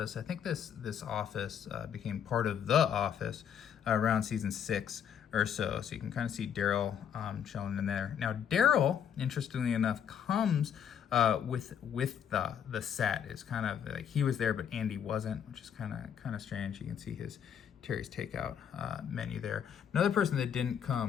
I think this office became part of the office around season 6 or so. So you can kind of see Daryl chilling in there. Now Daryl, interestingly enough, comes with the set. It's kind of like he was there, but Andy wasn't, which is kind of strange. You can see his Terry's Takeout menu there. Another person that didn't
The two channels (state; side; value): quieter; right; 8.5 dB